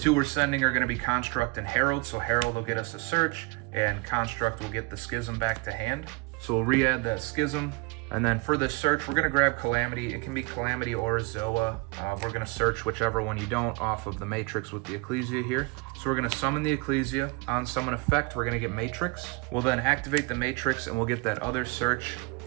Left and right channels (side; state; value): left; quieter; 27.8 dB